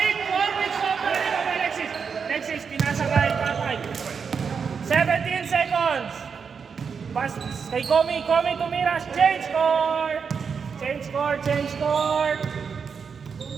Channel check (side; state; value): left; quieter; 6.1 dB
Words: Sobra rin ang Alexis. Pinasa kay Papay. 17 seconds. Pass kay Komi. Tumira. Change score.